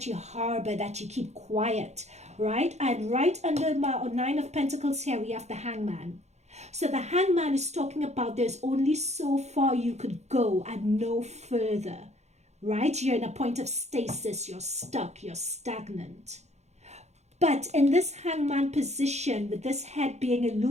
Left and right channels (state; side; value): late; left; 0.32 ms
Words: you harbor, that you keep quiet, right? And right under my Nine of Pentacles here, we have the Hangman. So the Hangman is talking about there's only so far you could go and no further, right? You're in a point of stasis, you're stuck, you're stagnant. But in this Hangman position, with this head being